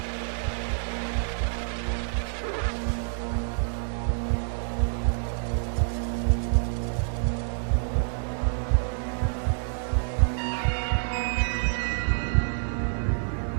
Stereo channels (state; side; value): silent; left; 60 dB below the other